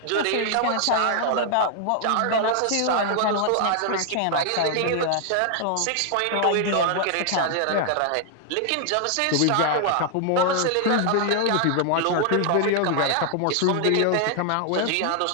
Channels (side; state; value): both; different; correlation 0.00